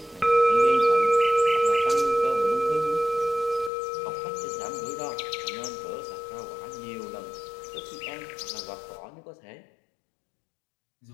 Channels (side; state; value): right; drops out; at 3.7 s